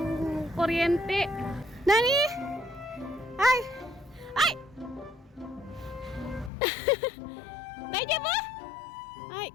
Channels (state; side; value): drops out; right; at 6.5 s